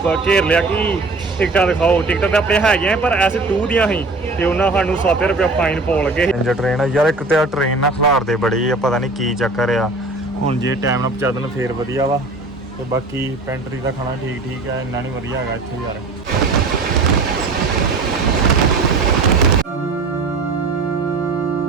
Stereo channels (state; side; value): quieter; left; 3.4 dB